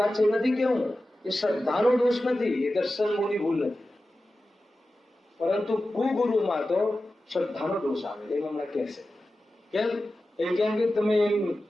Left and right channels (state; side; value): normal; both; correlation 0.94